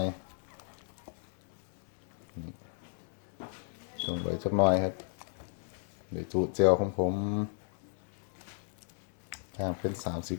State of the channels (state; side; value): silent; right; 55 dB below the other